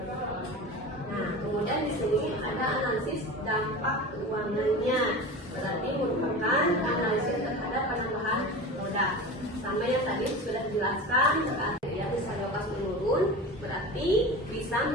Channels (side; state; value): both; normal; correlation 0.31